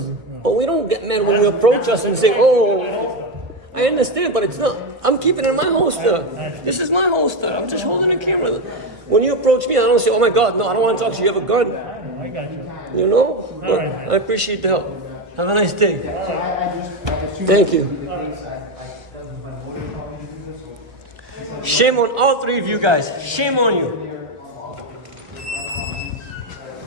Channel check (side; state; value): left; late; 1.4 ms